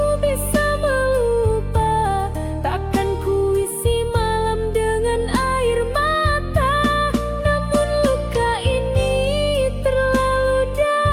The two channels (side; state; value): both; identical; correlation 1.00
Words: bisa melupa, takkan ku isi malam dengan air mata. Namun luka ini terlalu